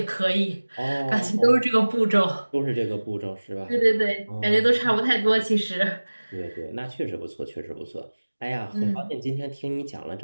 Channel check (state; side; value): inverted; both; correlation -1.00